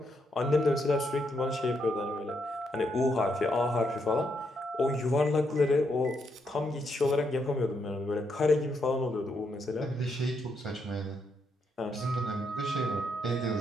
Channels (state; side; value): normal; both; correlation 0.78